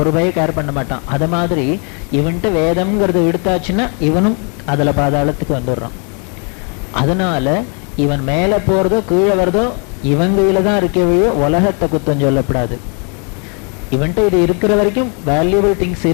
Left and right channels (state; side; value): quieter; right; 37.2 dB